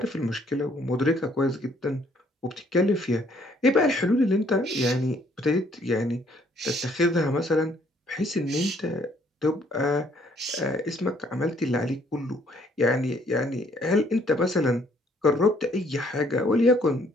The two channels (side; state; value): both; normal; correlation 0.64